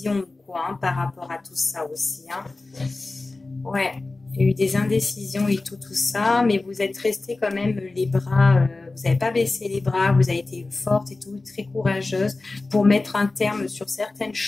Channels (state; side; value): quieter; right; 3.3 dB